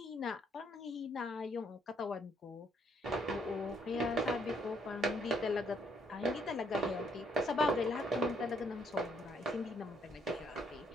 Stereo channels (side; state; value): both; normal; correlation 0.69